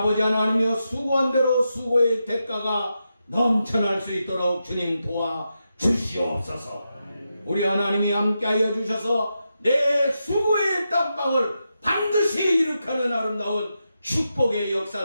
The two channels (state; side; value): inverted; both; correlation -0.87